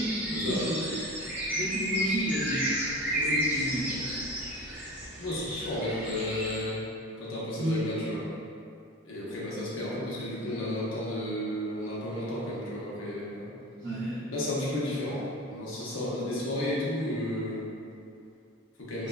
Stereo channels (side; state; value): both; normal; correlation 0.33